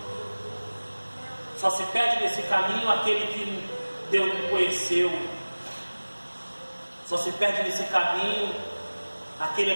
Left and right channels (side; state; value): both; inverted; correlation -1.00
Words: Só se perde nesse caminho aquele que Deus não conheceu. Só se perde nesse caminho aquele